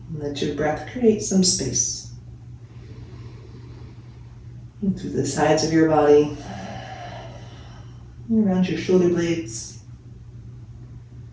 Let your breath create some space. And through the sides of your body, around your shoulder blades,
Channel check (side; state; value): both; identical; correlation 1.00